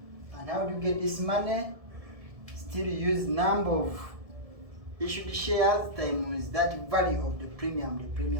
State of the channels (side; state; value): left; late; 1.7 ms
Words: And how do you get this money? Still use number of issued shares times that value of the